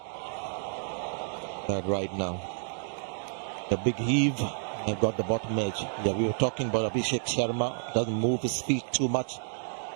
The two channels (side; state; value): left; silent; digital silence